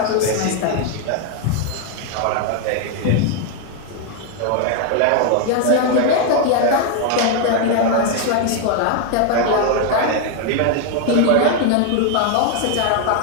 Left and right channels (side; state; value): both; different; correlation 0.01